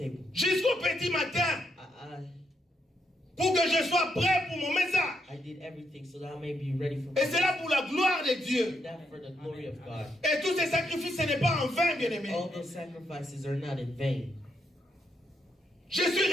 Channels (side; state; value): both; normal; correlation 0.79